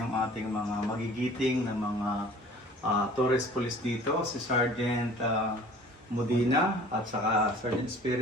ating mga magigiting na mga tourist police dito, si Sergeant Modina at saka Sergeant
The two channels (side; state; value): both; normal; correlation 0.48